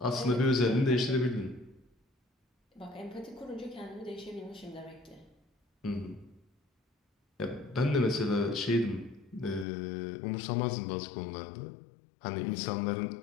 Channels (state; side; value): drops out; right; at 9.7 s